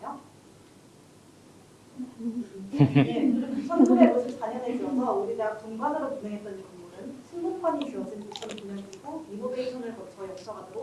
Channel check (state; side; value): identical; both; correlation 1.00